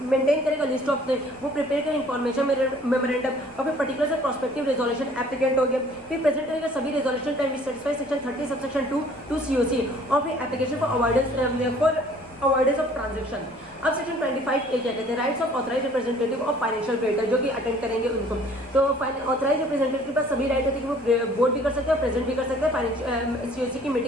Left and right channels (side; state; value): left; noise; rumble, 27 dB below the sound